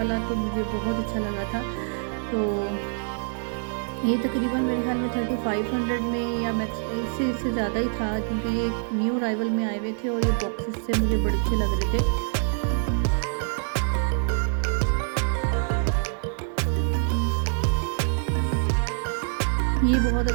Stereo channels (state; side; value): silent; left; 60 dB below the other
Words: तो मुझे बहुत अच्छा लगा था। तो ये तकरीबन मेरे ख्याल में 3500 में या मैक्स इससे ज़्यादा ही था, क्योंकि ये न्यू अराइवल में आए हुए थे। और ये बॉक्सेस से मुझे बड़े अच्छे लग रहे थे। ये बहुत